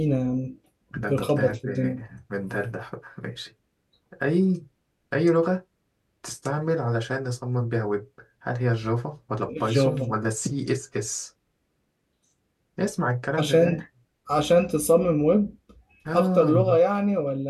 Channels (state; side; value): identical; both; correlation 1.00